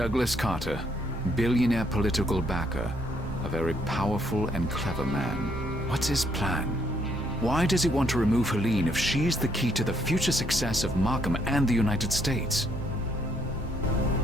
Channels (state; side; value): normal; both; correlation 0.70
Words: Carter, billionaire political backer, a very powerful and clever man. What's his plan? Why does he want to remove Helene if she's the key to the future success of Markham and the United States?